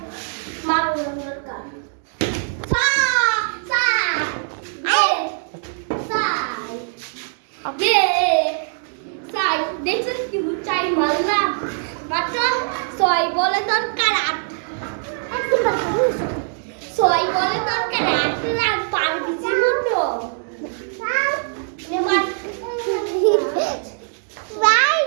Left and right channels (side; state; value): left; silent; digital silence